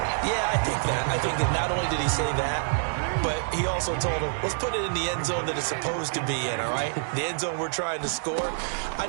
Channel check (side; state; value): left; silent; 60 dB below the other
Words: Yeah, I think that. I think that not only did he say that, but he also told him, let's put it in the end zone that it's supposed to be in, all right? The end zone we're trying to score. I